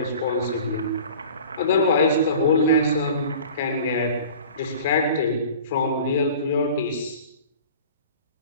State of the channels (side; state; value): both; inverted; correlation -0.43